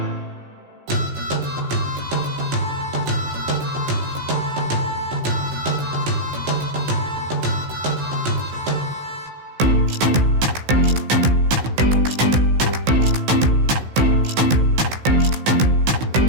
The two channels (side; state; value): left; late; 16 ms